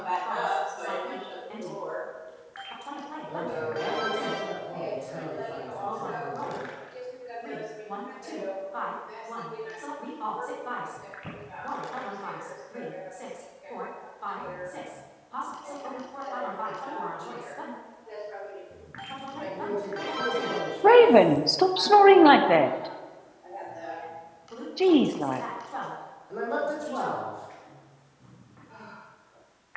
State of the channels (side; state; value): both; identical; correlation 1.00